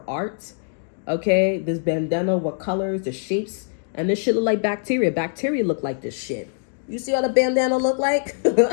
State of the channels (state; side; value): silent; right; 63 dB below the other